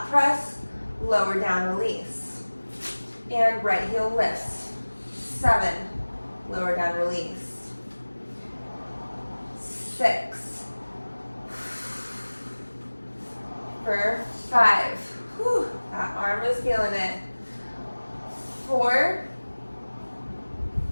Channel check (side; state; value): both; inverted; correlation -1.00